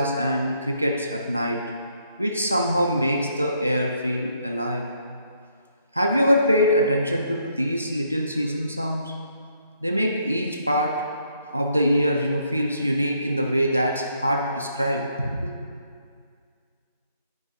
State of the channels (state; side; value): inverted; both; correlation -0.72